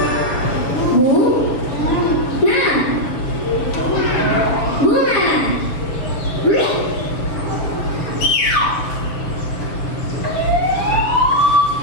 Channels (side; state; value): right; late; 6.8 ms